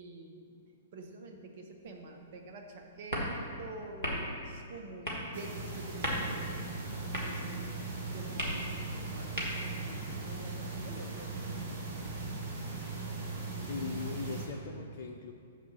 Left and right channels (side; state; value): both; inverted; correlation -0.42